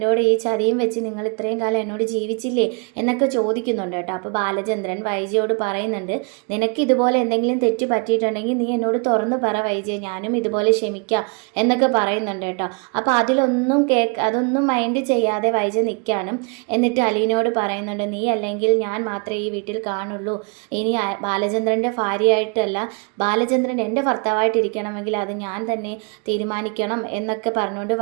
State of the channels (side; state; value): left; quieter; 35.6 dB